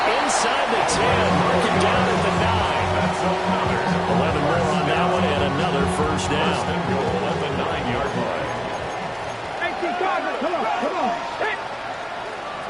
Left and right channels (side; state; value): both; identical; correlation 1.00